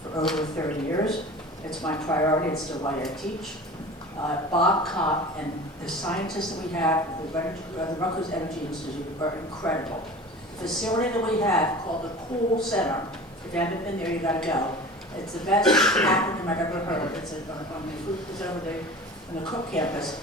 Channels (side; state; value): both; normal; correlation 0.37